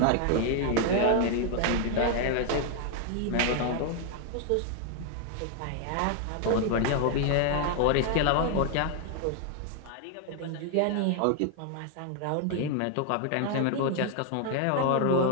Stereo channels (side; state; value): both; different; correlation 0.00